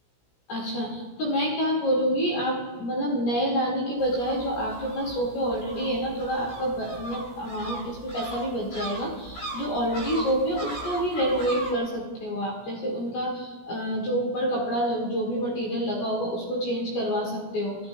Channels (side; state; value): right; late; 17 ms